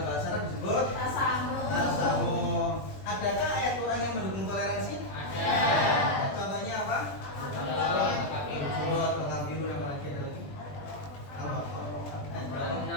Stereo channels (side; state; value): right; late; 20 ms